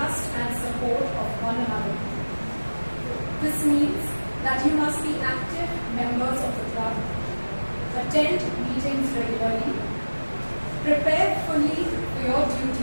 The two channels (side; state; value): both; inverted; correlation -1.00